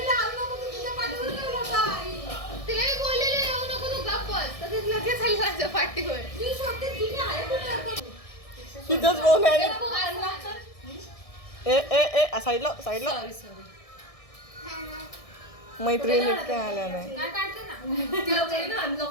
तिला मी बोललेले येऊ नको तू गप्पच तर ते लगेच आली माझ्या पाठीवर. तिथंच फोन आहे. ए ए ए साईडला साईडला. मैत्रिणी काय आल्या नाही. काय काढते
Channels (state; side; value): late; right; 1.6 ms